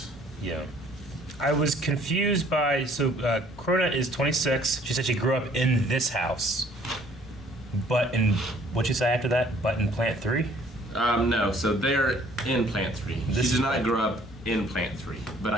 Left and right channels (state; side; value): normal; both; correlation 0.58